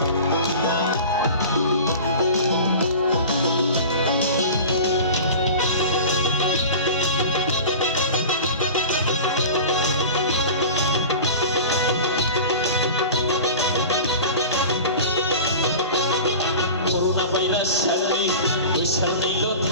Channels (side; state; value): both; inverted; correlation -0.35